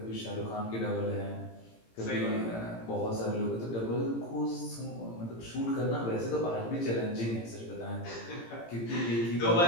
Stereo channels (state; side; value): late; right; 18 ms